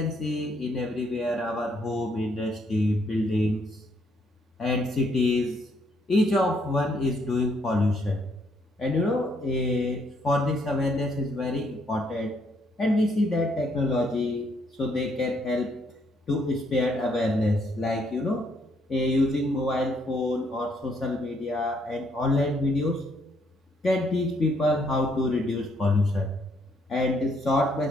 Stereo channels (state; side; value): normal; both; correlation 0.71